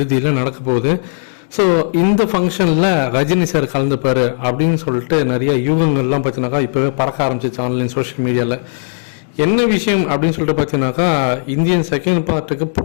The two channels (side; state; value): right; silent; digital silence